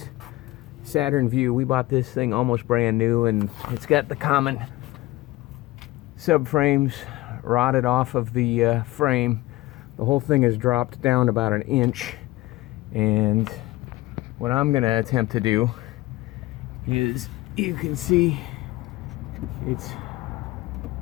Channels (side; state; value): right; quieter; 18.7 dB